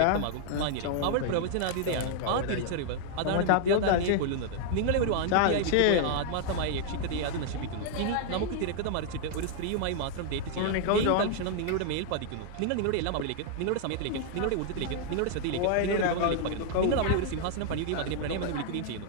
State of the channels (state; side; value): different; both; correlation 0.00